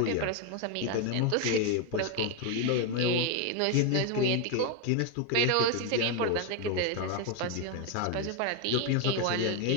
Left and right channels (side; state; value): both; different; correlation 0.01